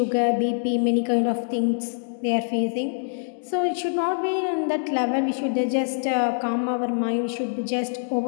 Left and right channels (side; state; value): right; silent; digital silence